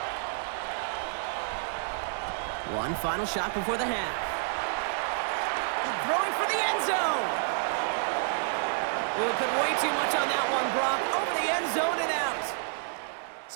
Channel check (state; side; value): silent; left; digital silence